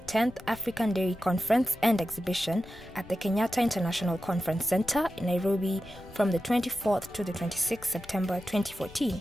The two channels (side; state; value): left; noise; rumble, 19 dB below the sound